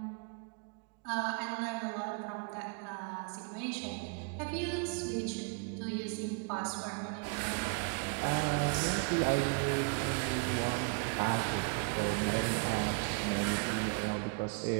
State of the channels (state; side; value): quieter; left; 34.0 dB